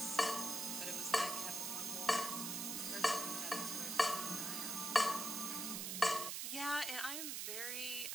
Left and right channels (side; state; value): right; noise; hiss, 2 dB below the sound